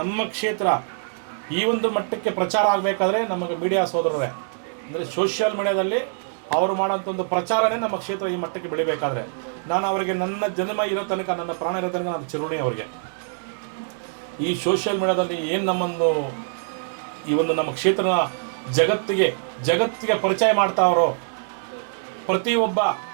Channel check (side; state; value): left; silent; digital silence